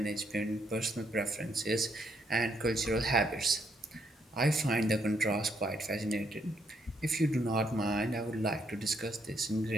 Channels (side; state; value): both; normal; correlation 0.74